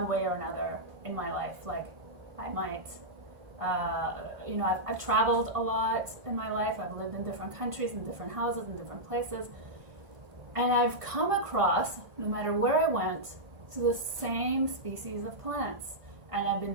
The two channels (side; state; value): left; late; 1.5 ms